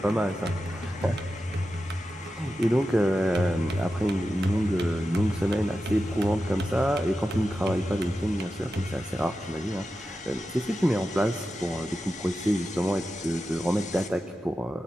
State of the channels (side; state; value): both; normal; correlation 0.91